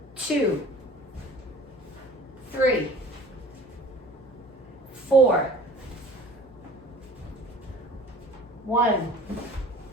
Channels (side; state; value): both; normal; correlation 0.45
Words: 2, 3, 4, 1,